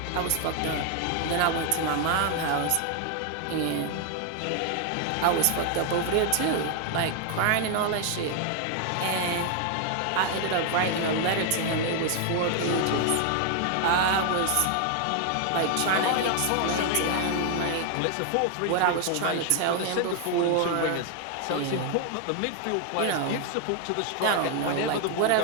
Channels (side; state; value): both; different; correlation 0.00